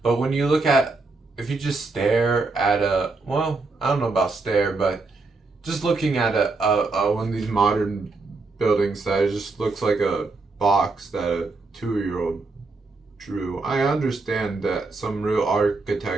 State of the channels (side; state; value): left; quieter; 3.7 dB